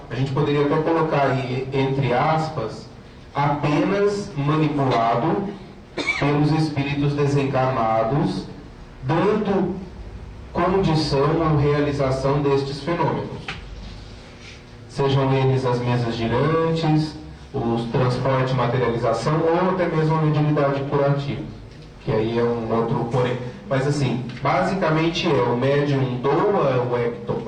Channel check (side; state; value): both; identical; correlation 1.00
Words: a gente poderia até colocar aí, entre aspas, apenas manipulado pelos espíritos desencarnados, dando condição ou realização destes fenômenos. Sejam eles as mesas girantes, os transporte e materialização, ou até mesmo a mediunidade curativa, que aí é um outro porém. Mas assim, basicamente o médium doa o